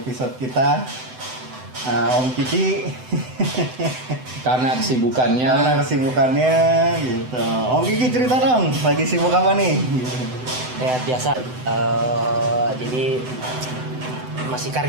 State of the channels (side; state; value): left; late; 7.9 ms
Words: kita Om Kiki. Karena kesibukannya gitu. Om Kiki cerita dong, lagi sibuk apa nih? Ya biasa. Jadi masih